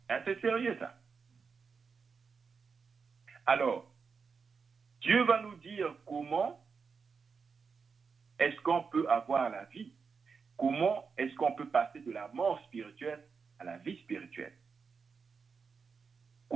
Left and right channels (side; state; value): left; quieter; 5.4 dB